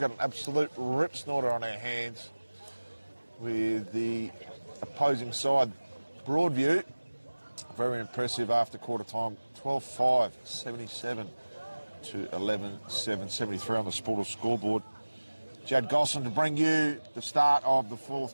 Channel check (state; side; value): inverted; both; correlation -1.00